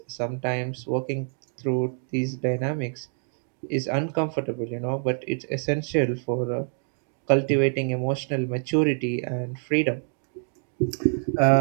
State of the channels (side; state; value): left; silent; 61 dB below the other